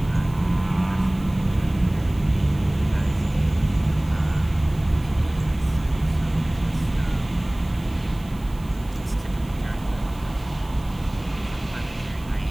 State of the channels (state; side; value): noise; right; hiss, 24 dB below the sound